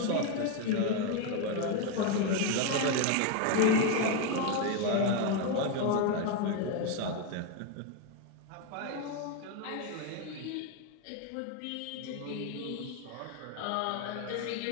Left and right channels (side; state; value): both; different; correlation 0.02